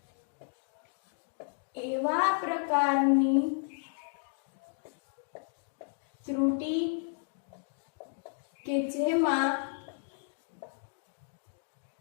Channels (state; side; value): silent; right; digital silence